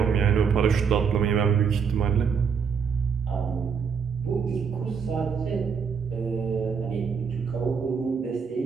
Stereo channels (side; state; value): left; quieter; 6.3 dB